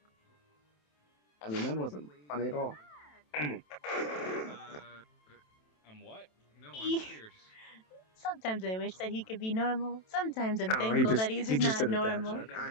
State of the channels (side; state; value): right; late; 27 ms